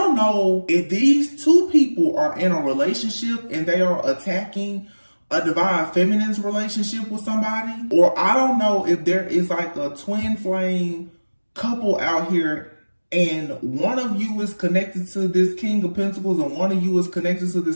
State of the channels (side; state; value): both; inverted; correlation -1.00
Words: know if these 2 people are in a relationship and they are attacking a divine feminine's relationship with somebody, or I don't know if there is like a twin flame couple out here and one of you is connected to this King of Pentacles and one of you is connected to